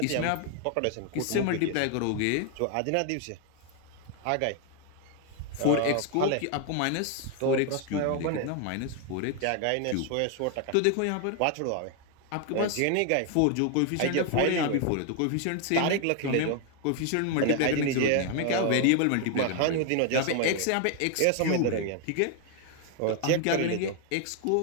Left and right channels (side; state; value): both; different; correlation 0.01